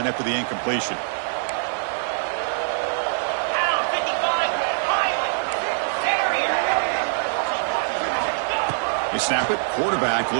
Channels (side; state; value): left; silent; digital silence